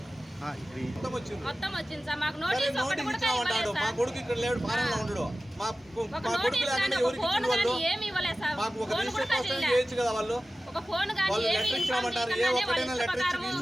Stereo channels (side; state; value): both; normal; correlation 0.96